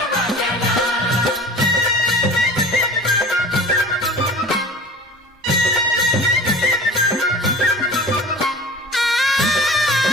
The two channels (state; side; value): normal; both; correlation 0.40